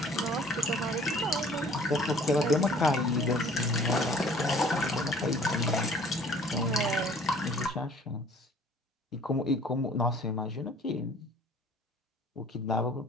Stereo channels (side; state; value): both; normal; correlation 0.53